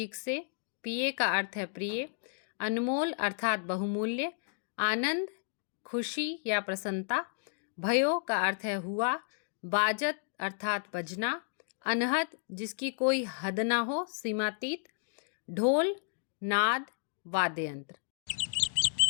से। पिए का अर्थ है प्रिय। अनमोल अर्थात बहुमूल्य। आनंद खुशी या प्रसन्नता। भयो का अर्थ है हुआ। बाजत अर्थात बजना। अनहद जिसकी कोई हद ना हो, सीमातीत। ढोल नाद, वाद्य यंत्र।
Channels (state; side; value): silent; right; digital silence